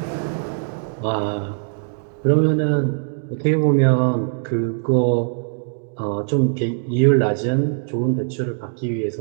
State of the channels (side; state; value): left; silent; digital silence